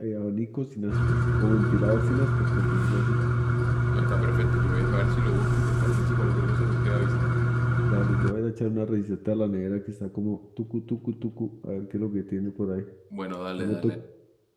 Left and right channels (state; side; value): identical; both; correlation 1.00